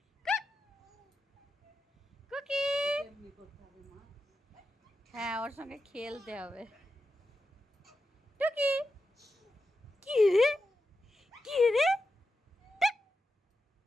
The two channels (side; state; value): both; normal; correlation 0.89